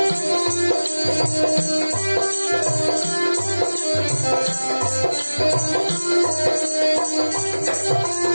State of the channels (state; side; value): inverted; both; correlation -1.00